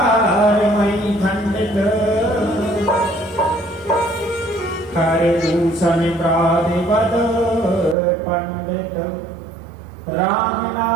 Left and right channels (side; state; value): left; drops out; at 8.0 s